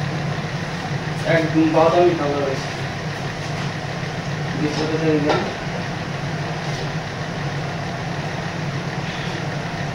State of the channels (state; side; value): identical; both; correlation 1.00